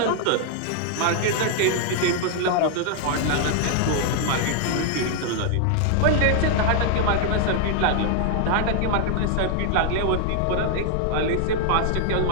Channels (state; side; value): different; both; correlation 0.00